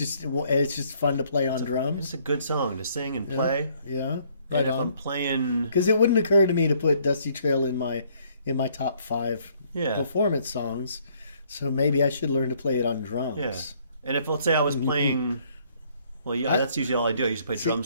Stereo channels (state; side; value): inverted; both; correlation -0.64